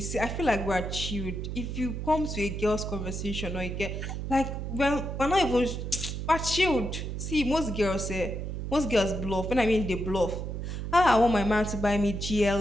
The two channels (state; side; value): noise; right; hum, 5 dB below the sound